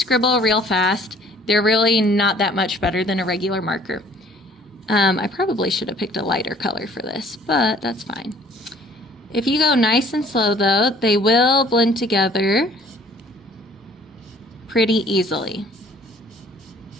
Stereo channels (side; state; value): both; normal; correlation 0.56